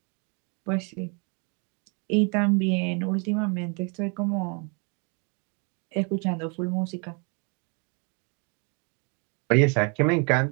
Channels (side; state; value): left; quieter; 34.7 dB